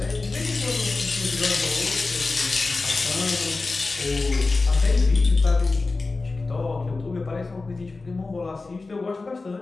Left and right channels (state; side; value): quieter; right; 3.6 dB